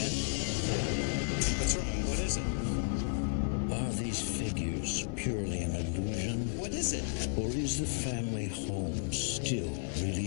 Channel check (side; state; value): right; silent; 56 dB below the other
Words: What's wrong? What is it? Are these figures purely an illusion? What is it? Or is the family home still really